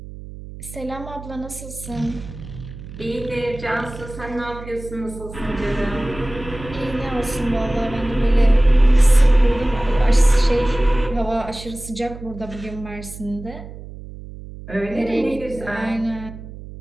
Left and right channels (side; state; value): right; noise; hum, 14 dB below the sound